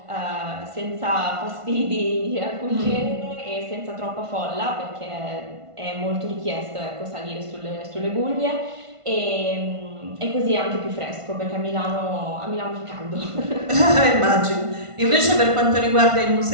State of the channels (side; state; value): left; late; 1.5 ms